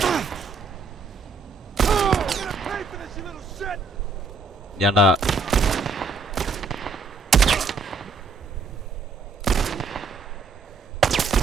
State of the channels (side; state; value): left; quieter; 4.3 dB